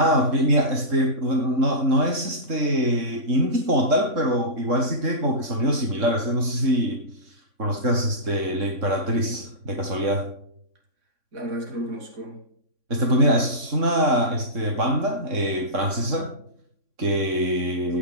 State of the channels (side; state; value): left; late; 3.6 ms